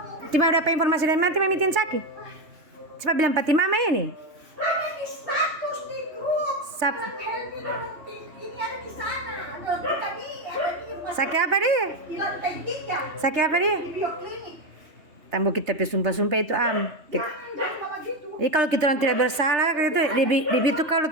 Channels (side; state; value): left; late; 3.1 ms